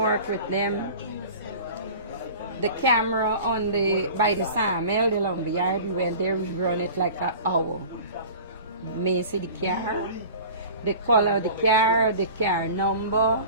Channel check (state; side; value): inverted; both; correlation -0.40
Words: The camera on by the sawmill, the lumberyard, we went there, we run it like an hour. may see the car, the color of the car number.